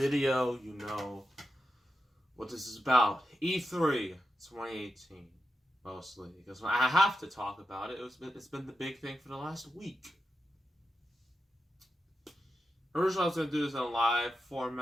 you know what this is about. E3 2018, mostly, because I have to talk about it. It's been the big thing for the last week. Originally, I was going to do this in a live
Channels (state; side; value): normal; both; correlation 0.89